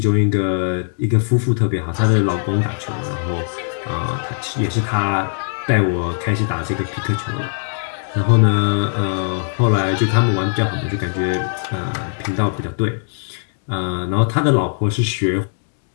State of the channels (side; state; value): right; silent; digital silence